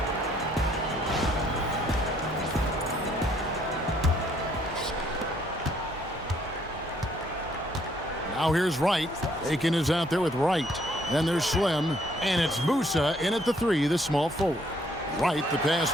Now here's Wright. Aiken is out there with Wright. Then there's Slim. And it's Musa in at the 3, the small forward. Wright, the pass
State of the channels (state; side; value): normal; both; correlation 0.67